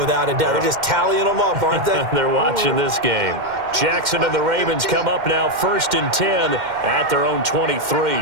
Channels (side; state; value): left; late; 2.1 ms